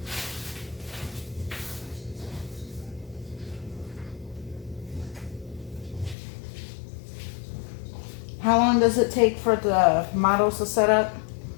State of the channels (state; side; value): drops out; right; at 6.2 s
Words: How long does it take for the models to set up?